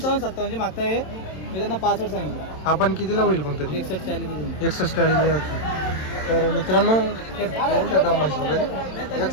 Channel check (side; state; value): right; late; 27 ms